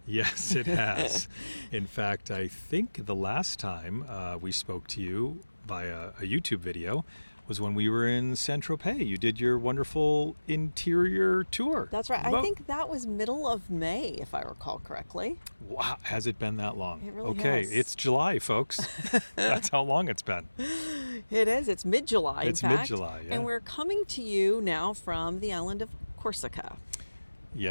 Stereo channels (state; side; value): inverted; both; correlation -1.00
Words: Yes, it has. In fact, I think the last time we spoke to you via a YouTube video was when we were in Saint-Tropez. You did your wonderful interior tour. That's right. I think that was middle of May, if I recall correctly. Wow, has it been that long? It really Okay, has. it's July, folks. That's how long it's been. It is. It's mid-July, It's in fact. mid-July, yeah. And we're coming to you now from the island of Corsica.